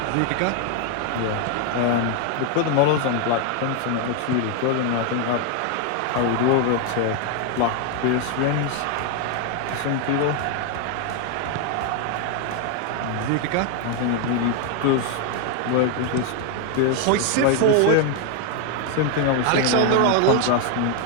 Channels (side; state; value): both; different; correlation 0.01